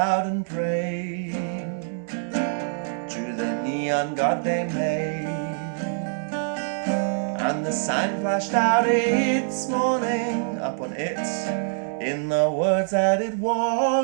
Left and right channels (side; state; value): left; silent; digital silence